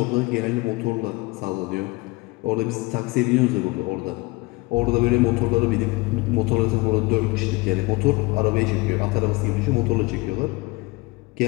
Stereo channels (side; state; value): right; quieter; 23.7 dB